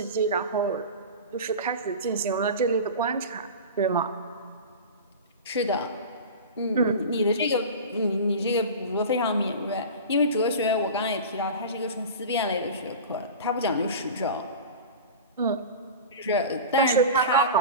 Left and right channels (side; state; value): both; inverted; correlation -0.32